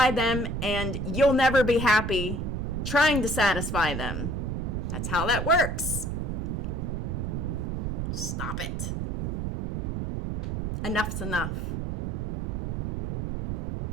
them, and you'll never be happy trying to satisfy them. That's how that works. Stop it. Enough's enough.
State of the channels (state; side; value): noise; right; rumble, 2 dB below the sound